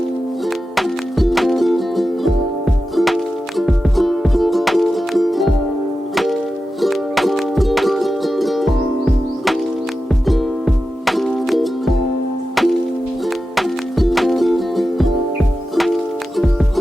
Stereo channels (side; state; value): both; normal; correlation 0.92